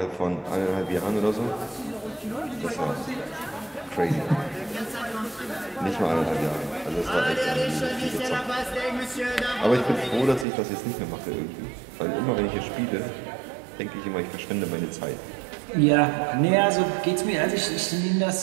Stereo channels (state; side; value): drops out; left; at 10.5 s